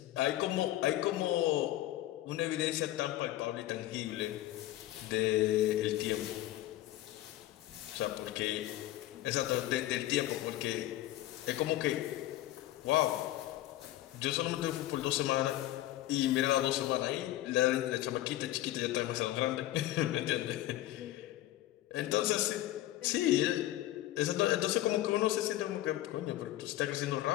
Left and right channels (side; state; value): right; quieter; 15.0 dB